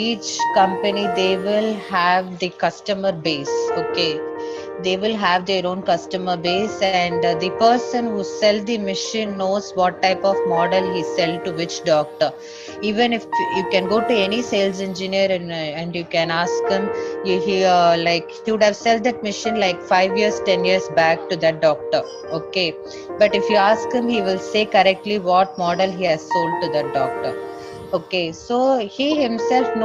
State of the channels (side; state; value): both; identical; correlation 1.00